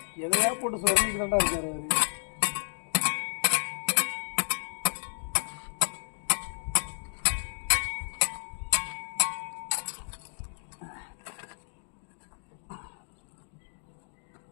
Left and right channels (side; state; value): right; silent; digital silence